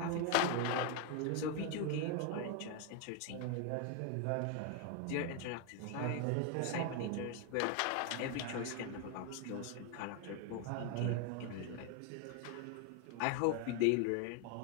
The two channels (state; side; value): different; both; correlation 0.01